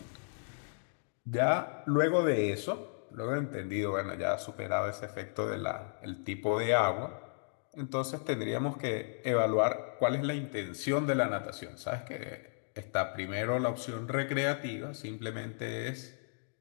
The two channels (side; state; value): right; silent; digital silence